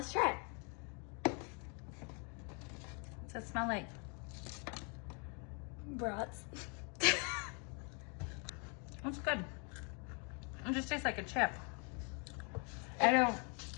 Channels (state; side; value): quieter; right; 36.2 dB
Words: try. What's it smell like? Brats. It's good. It just tastes like a chip. I don't